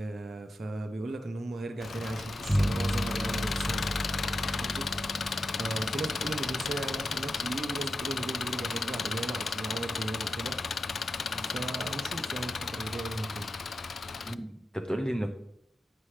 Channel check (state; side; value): normal; both; correlation 0.90